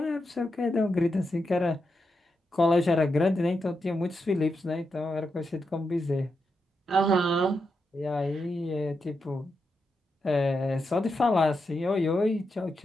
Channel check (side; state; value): both; normal; correlation 0.85